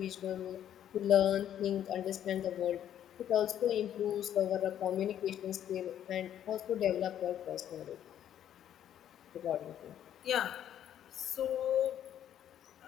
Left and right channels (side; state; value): right; quieter; 10.5 dB